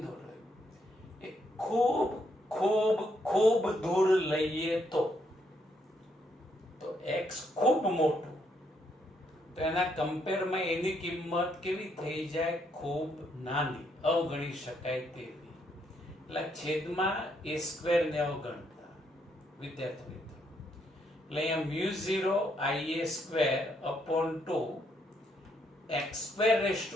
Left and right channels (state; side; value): normal; both; correlation 0.74